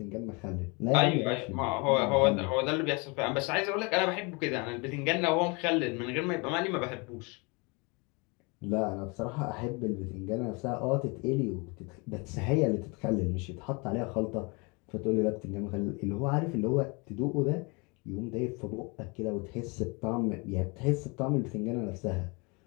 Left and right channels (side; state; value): right; quieter; 29.6 dB